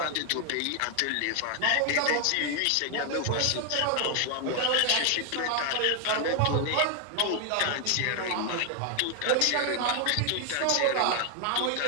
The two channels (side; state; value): both; different; correlation 0.00